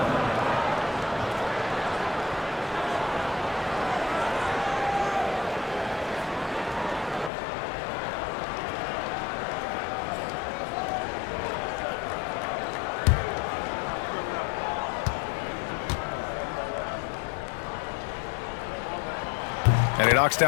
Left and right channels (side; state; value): right; drops out; at 7.3 s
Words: And he knocks